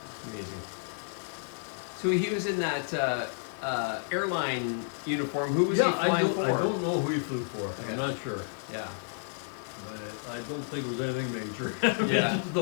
Amazing. So he was in that airline uniform. Who was he Yeah, flying for? I don't know who he flew for. Yeah. I'm not sure. Yeah. But I don't think it was anything major. Yeah. Just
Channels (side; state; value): right; silent; digital silence